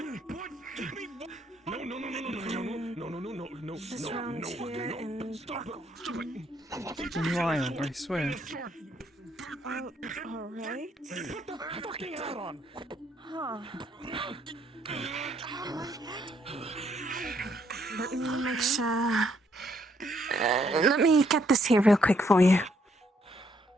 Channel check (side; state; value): both; normal; correlation 0.71